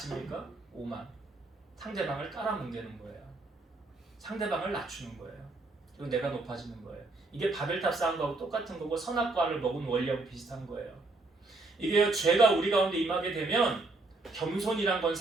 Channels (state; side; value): quieter; left; 3.2 dB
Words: 오만 상대방을 깔아뭉개는 거예요. 상대방을 낮추는 거예요. 그리고 내가 높아지는 거예요. 이게 바벨탑 쌓은 거하고 똑같은 거고 선악과를 먹은 원리하고 비슷한 거예요. 이게 죄가 우리 가운데 임하게 되면 겸손이란 건